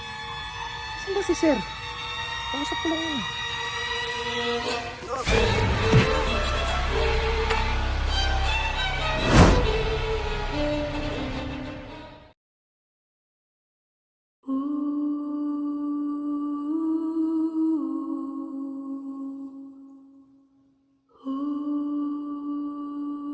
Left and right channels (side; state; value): both; identical; correlation 1.00